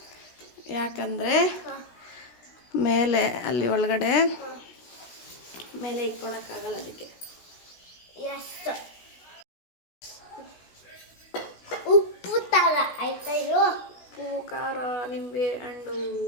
ಯಾಕಂದರೆ ಮೇಲೆ ಅಲ್ಲಿ ಒಳಗಡೆ ಮೇಲೆ ಇಟ್ಕೊಳಕ್ಕಾಗಲ್ಲ, ಅದಕ್ಕೆ. ಉಪ್ಪು ತರ ಆಯ್ತಾ? ಇದು ಉಪ್ಪು, ಖಾರ, ನಿಂಬೆ ಹಣ್ಣು,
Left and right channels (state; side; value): late; right; 16 ms